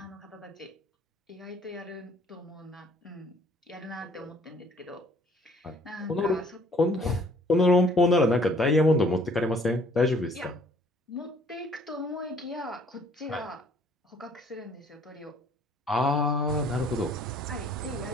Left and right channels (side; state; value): both; normal; correlation 0.59